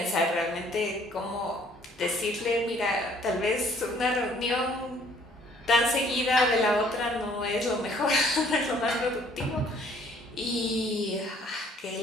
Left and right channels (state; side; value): normal; both; correlation 0.60